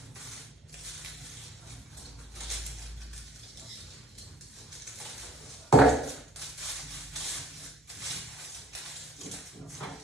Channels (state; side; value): normal; both; correlation 0.55